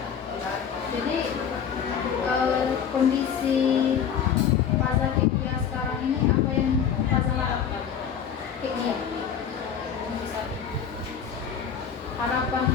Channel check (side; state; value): right; quieter; 7.8 dB